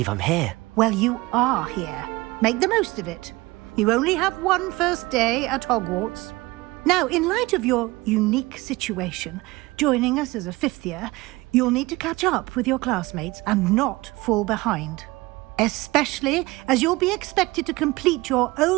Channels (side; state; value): left; quieter; 21.3 dB